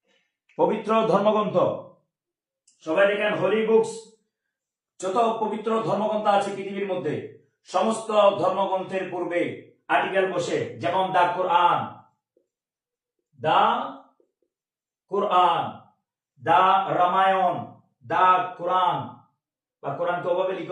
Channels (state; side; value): identical; both; correlation 1.00